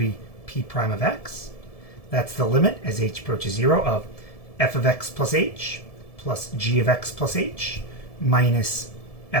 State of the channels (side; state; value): right; late; 1.7 ms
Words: p prime of x. That's the limit as h approaches 0 of f of x plus h plus g of x plus h minus